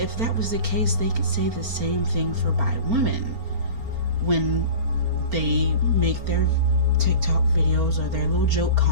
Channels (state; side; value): late; left; 4.4 ms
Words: that was the case, they could say the same thing for bi women when they make their TikTok videos or their little joke